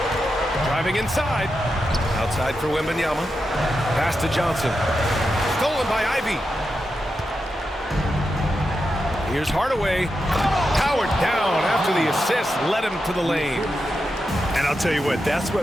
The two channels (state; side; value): normal; both; correlation 0.88